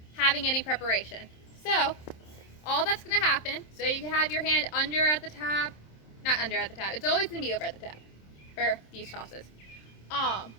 having any preparation. So, all that's going to happen, so you can have your hand under at the tab, not under at the tab, it's always going to be over at the tab for these tosses.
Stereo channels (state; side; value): late; right; 27 ms